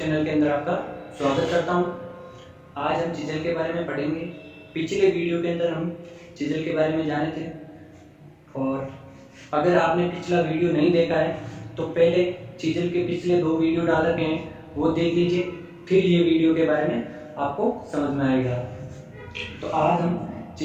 के अंदर आपका स्वागत करता हूं। आज हम चीजल के बारे में पढ़ेंगे। पिछले वीडियो के अंदर हम चीजल के बारे में जाने थे, और अगर आपने पिछला वीडियो नहीं देखा है तो पहले चीजल के पिछले 2 वीडियो डाल रखे हैं, वो देख लीजिए, फिर ये वीडियो के बारे में आपको समझ में आएगा। तो आज हम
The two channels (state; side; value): identical; both; correlation 1.00